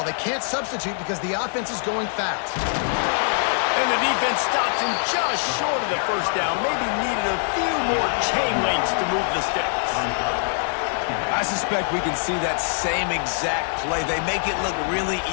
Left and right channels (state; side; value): silent; right; 62 dB below the other